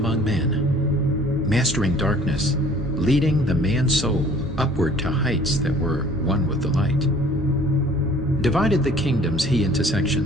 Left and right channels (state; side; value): normal; both; correlation 0.52